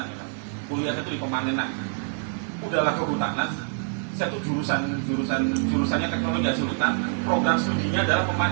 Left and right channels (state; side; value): silent; left; 56 dB below the other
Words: ya, kuliahnya itu di pemanenan. Udahlah kehutanan, saya tuh jurusannya teknologi hasil hutan, program studinya adalah